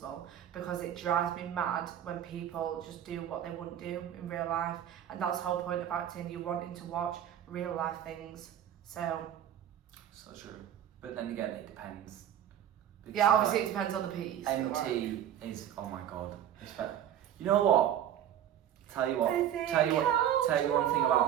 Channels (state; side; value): quieter; left; 10.4 dB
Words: because it drives me mad when people just do what they wouldn't do in real life, and that's the whole point of acting. You're wanting to watch real life things, so. So true. But then again, it depends. Because Yeah, obviously it depends on the piece. MT is, oh my god. You know what? Tell you one thing